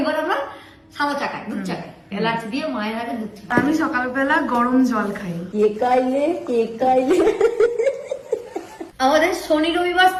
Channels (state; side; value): identical; both; correlation 1.00